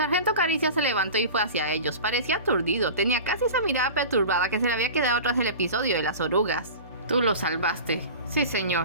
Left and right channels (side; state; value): both; inverted; correlation -0.34